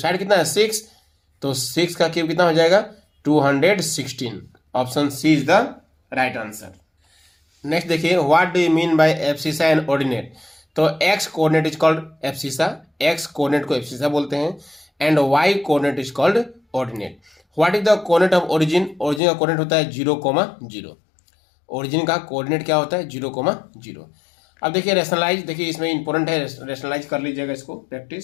कितना है 6, तो 6 का क्यूब कितना हो जाएगा 216, option C is the right answer. Next देखिए, what do you mean by abscissa and ordinate, तो X coordinate is called abscissa, X coordinate को एब्सिसा बोलते हैं, and Y coordinate is called ordinate. What is the coordinate of origin, origin का coordinate होता है 0,0, origin का coordinate क्या होता है 0,0। अब देखिए रेशनलाइज, देखिए इसमें इंपॉर्टेंट है, रेशनलाइज कर लीजिएगा इसको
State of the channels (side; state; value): right; drops out; at 19.2 s